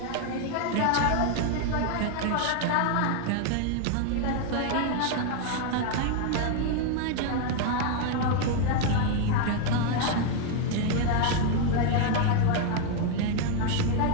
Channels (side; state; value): both; different; correlation 0.00